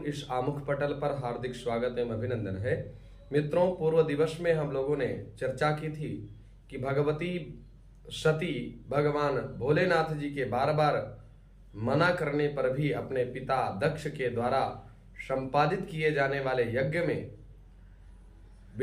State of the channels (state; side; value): identical; both; correlation 1.00